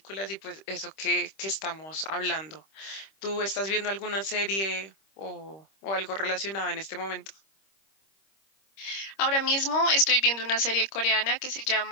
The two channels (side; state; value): right; late; 26 ms